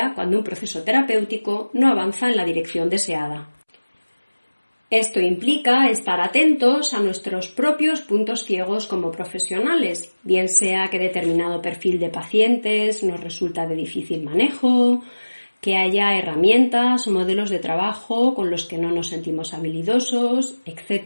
cuando un proceso terapéutico no avanza en la dirección deseada. Esto implica estar atentos a nuestros propios puntos ciegos como profesionales, bien sea que determinado perfil de pacientes nos resulta de difícil manejo, que haya herramientas o modelos de trabajo con los que no nos sentimos habilidosos,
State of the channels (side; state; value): both; inverted; correlation -1.00